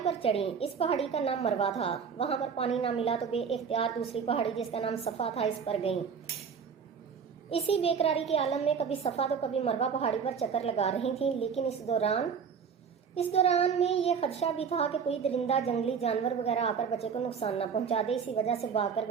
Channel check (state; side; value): quieter; left; 6.5 dB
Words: پر چڑھیں۔ اس پہاڑی کا نام مروا تھا۔ وہاں پر پانی نہ ملا تو بے اختیار دوسری پہاڑی جس کا نام صفا تھا اس پر گئیں۔ اسی بے قراری کے عالم میں کبھی صفا تو کبھی مروا پہاڑی پر چکر لگا رہی تھیں، لیکن اس دوران میں یہ خدشہ بھی تھا کہ کوئی درندہ، جنگلی جانور وغیرہ آ کر بچے کو نقصان نہ پہنچا دے۔ اسی وجہ سے بھاگ کر